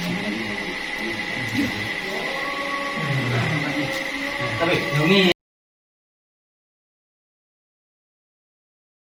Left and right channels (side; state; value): both; identical; correlation 1.00